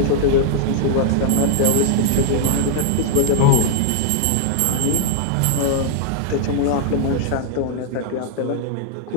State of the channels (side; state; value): both; different; correlation -0.01